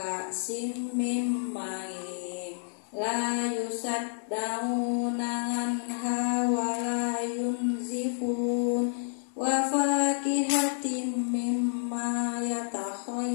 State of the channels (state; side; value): silent; right; digital silence